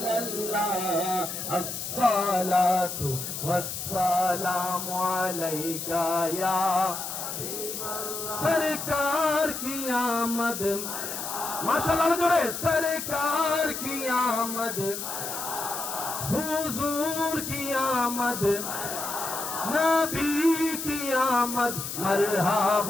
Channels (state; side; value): noise; left; hiss, 6 dB below the sound